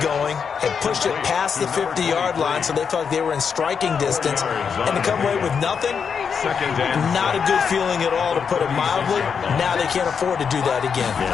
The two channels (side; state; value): right; quieter; 6.5 dB